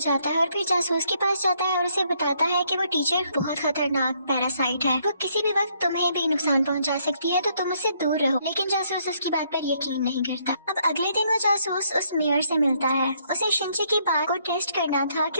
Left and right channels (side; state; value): both; inverted; correlation -0.70